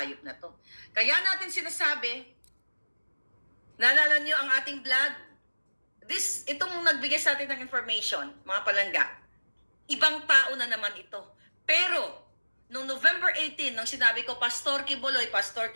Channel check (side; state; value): both; inverted; correlation -1.00